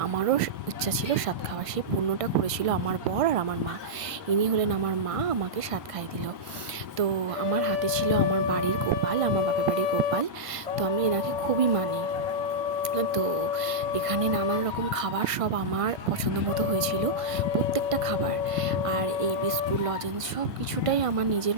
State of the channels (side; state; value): left; late; 1.5 ms